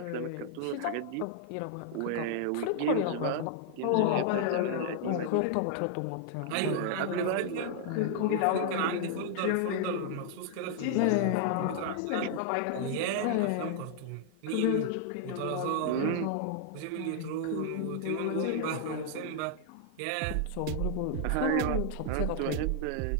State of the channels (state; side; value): different; both; correlation -0.01